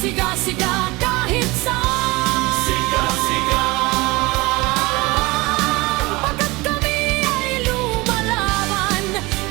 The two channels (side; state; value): left; quieter; 22.9 dB